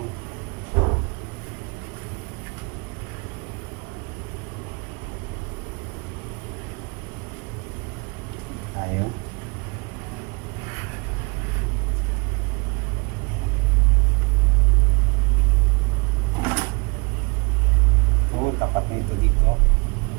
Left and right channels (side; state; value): left; quieter; 30.5 dB